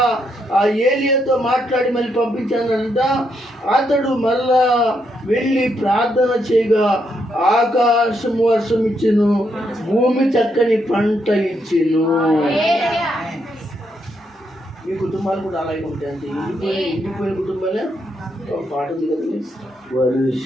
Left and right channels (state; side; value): normal; both; correlation 0.78